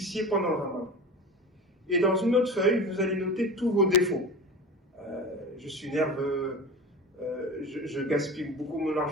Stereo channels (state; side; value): normal; both; correlation 0.31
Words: pendant le Ramadan. Et dans une autre feuille, vous allez noter tous vos défauts. Je suis nerveux, je gaspille beaucoup mon